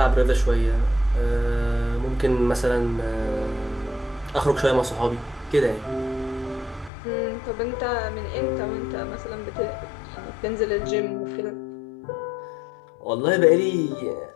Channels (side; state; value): right; drops out; at 6.9 s